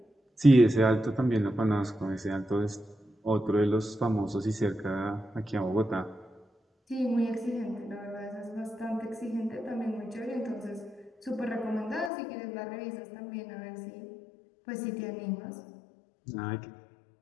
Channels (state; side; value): drops out; right; at 12.1 s